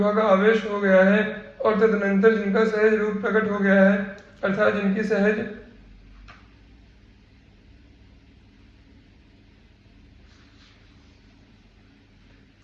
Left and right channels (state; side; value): identical; both; correlation 1.00